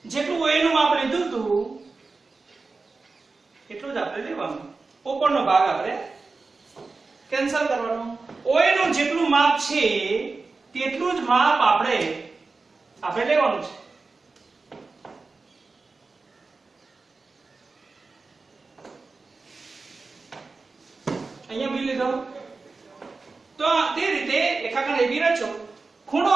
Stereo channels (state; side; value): quieter; left; 4.0 dB